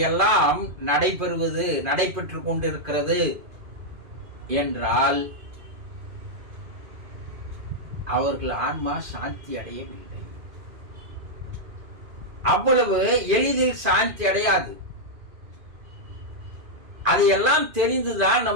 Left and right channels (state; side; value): late; left; 2.5 ms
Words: நடைபெற்று கொண்டிருக்கிறது என்றால் அவர்கள் ஆன்மா சாந்தி அடையவில்லை. அவ்வளவு எளிதில் சாந்தி அடையாது. அதையெல்லாம் தெரிந்துதான்